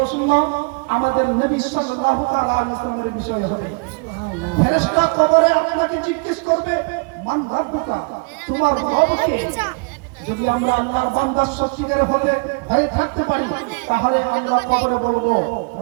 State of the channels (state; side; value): quieter; left; 33.0 dB